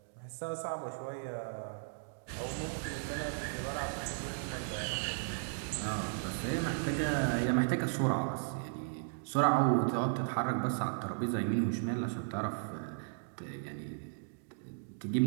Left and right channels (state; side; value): silent; left; digital silence